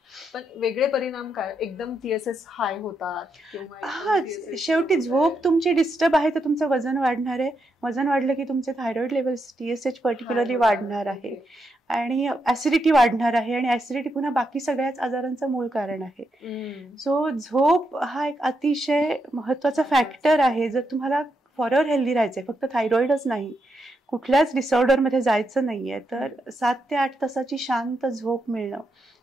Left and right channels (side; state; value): both; normal; correlation 0.82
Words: पण वेगळे परिणाम काय? एकदम TSH हाय होतात? हा, शेवटी झोप तुमची डिस्टर्ब आहे तर तुमचं वजन वाढणार आहे, वजन वाढलं की तुमचे थायरॉइड लेवल्स, TSH पर्टिक्युलरली वाढणार आहे आणि ऍसिडिटी वाढणार आहे, आणि ऍसिडिटी पुन्हा बाकी सगळ्याच आजारांचं मूळ कारण आहे. सो झोप हा एक अतिशय महत्वाचा फॅक्टर आहे. जर तुम्हाला फॉरएव्हर हेल्दी राहायचंय, फक्त थायरॉइडच नाही, कुठल्याच डिसऑर्डर मध्ये जायचं नाहीये, तर 7 ते 8 तासाची शांत झोप मिळणं